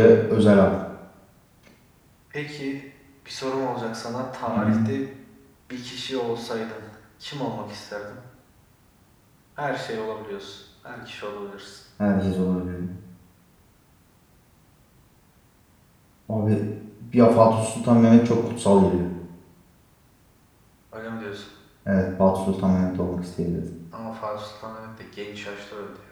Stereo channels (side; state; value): both; identical; correlation 1.00